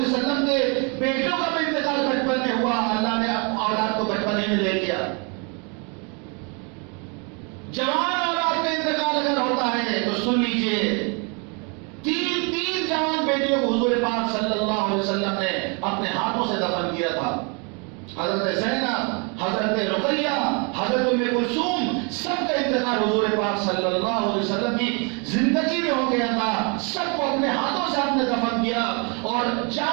وسلم کے بیٹوں کا بھی انتقال بچپن میں ہوا، اللہ نے اولاد کو بچپن ہی میں لے لیا۔ جوان اولاد کا انتقال اگر ہوتا ہے تو سن لیجئے، 3 جوان بیٹیوں کو حضور پاک صلی اللہ علیہ وسلم نے اپنے ہاتھوں سے دفن کیا تھا۔ حضرت زینب، حضرت رقیہ، حضرت ام کلثوم، سب کا انتقال حضور پاک صلی اللہ علیہ وسلم کی زندگی میں ہو گیا تھا۔ سب کو اپنے ہاتھوں سے آپ نے دفن کیا، اور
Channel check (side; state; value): left; quieter; 34.0 dB